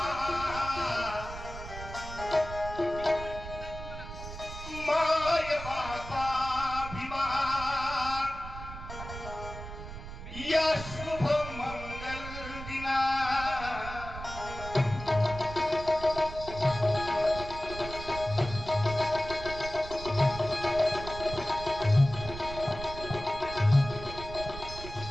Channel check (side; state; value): right; noise; rumble, 11 dB below the sound